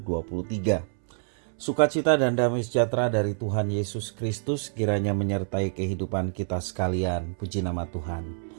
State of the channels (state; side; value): silent; left; 60 dB below the other